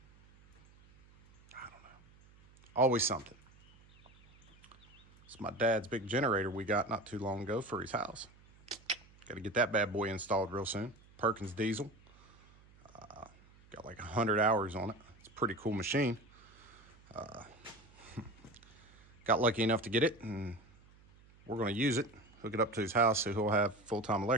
don't know, always something. It's my dad's big generator we got not too long ago for his house. Got to get that bad boy installed real soon. Perkins diesel. Got like 100 hours on it. It's a pretty cool machine. Got lucky enough to get it, and we're going to use it, hook it up to his house so he'll have full-time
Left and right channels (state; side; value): noise; right; hum, 26 dB below the sound